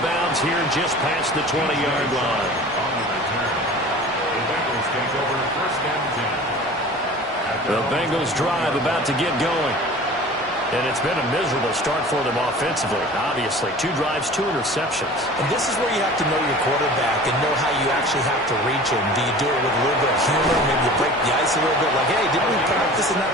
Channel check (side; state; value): both; normal; correlation 0.41